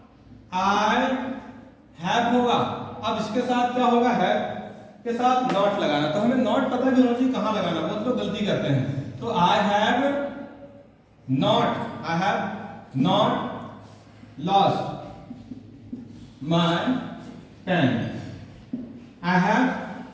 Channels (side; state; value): both; identical; correlation 1.00